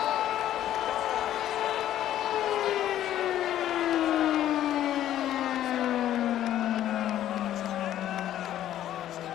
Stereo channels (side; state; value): right; quieter; 12.1 dB